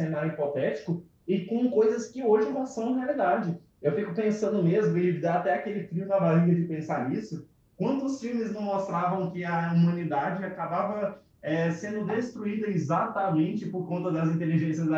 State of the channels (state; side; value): identical; both; correlation 1.00